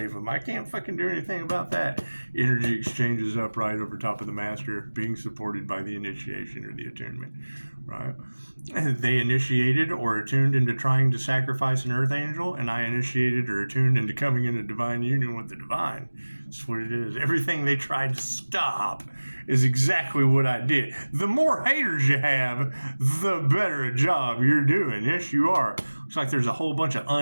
them. I can't fucking do anything about that. Energy exchanges upright over top of the master, being supported by the initiation or the attunement, right? They initiated or attuned into trying to sacrifice an earth angel, and I initiated or attuned into coming into divine union with the divine. That's what it is. Everything they tried to stop is exactly what I did. The more haters you have, the better a job you're doing. Yes, you are. Looks like there's a whole bunch of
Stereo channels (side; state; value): both; inverted; correlation -1.00